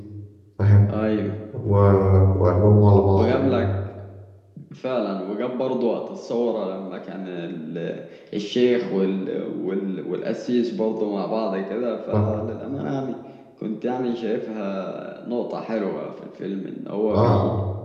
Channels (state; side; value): identical; both; correlation 1.00